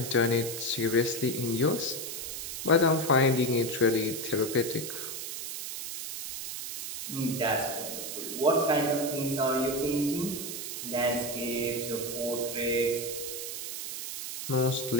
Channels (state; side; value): noise; right; hiss, 6 dB below the sound